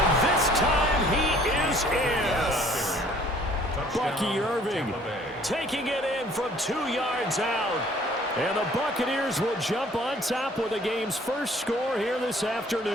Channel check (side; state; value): both; normal; correlation 0.57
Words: this time he is in. Yes. Bucky Irving taking it in from 2 yards out. And the Buccaneers will jump on top with the game's first score here this